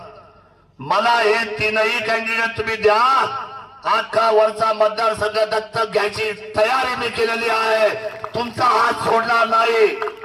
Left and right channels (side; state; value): both; identical; correlation 1.00